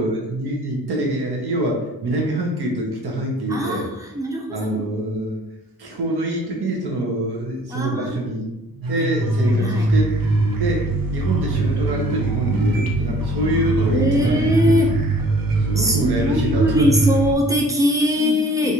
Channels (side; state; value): both; normal; correlation 0.54